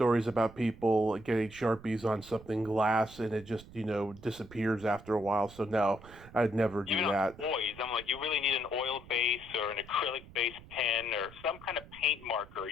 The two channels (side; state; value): right; noise; rumble, 19 dB below the sound